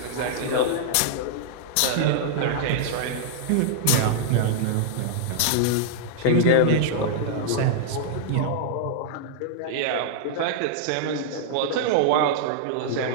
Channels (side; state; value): both; different; correlation -0.01